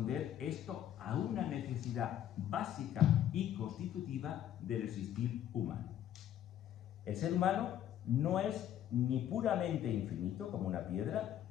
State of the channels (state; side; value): quieter; right; 11.0 dB